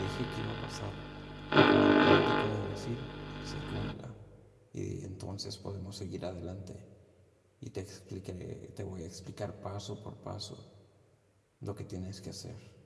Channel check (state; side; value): identical; both; correlation 1.00